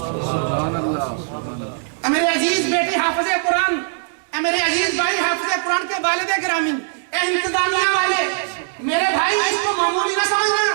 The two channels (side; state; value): left; silent; digital silence